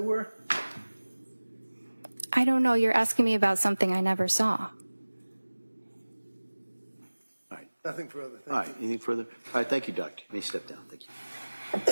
I don't know. You're asking me about something I never saw. All right. Nothing further. Thank All right. Anything further? All right. Thank you, Doctor. You may step down. Thank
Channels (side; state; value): both; inverted; correlation -1.00